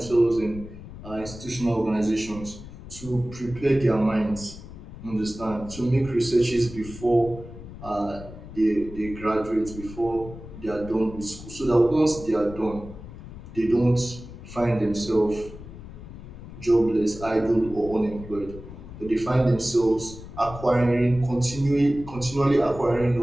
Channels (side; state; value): left; noise; rumble, 14 dB below the sound